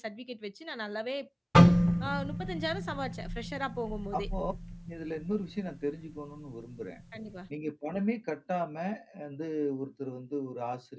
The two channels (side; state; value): both; identical; correlation 1.00